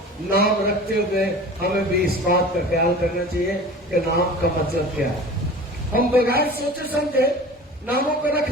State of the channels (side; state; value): both; normal; correlation 0.39